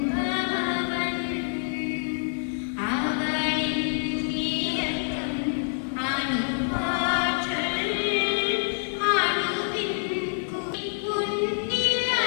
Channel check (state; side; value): silent; right; digital silence